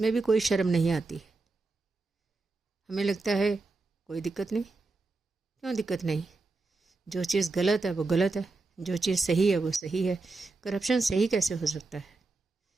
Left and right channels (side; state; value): left; quieter; 3.6 dB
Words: भी कोई शर्म नहीं आती। हमें लगता है कोई दिक्कत नहीं। क्यों दिक्कत नहीं? जो चीज़ गलत है वो गलत है, जो चीज़ सही है वो सही है। करप्शन सही कैसे हो सकता है?